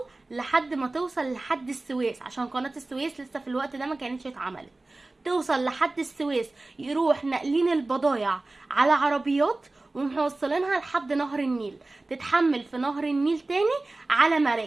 لحد السويس، عشان قناة السويس لسه في الوقت ده ما كانتش اتعملت. توصل لحد السويس، يروح ناقلين البضايع على عربيات وموصلينها لحد نهر النيل، تتحمل في نهر النيل تاني على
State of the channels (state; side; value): quieter; left; 3.0 dB